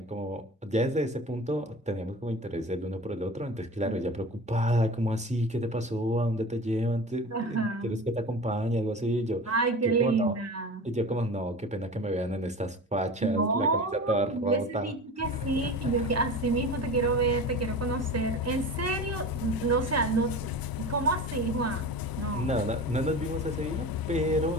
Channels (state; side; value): normal; both; correlation 0.33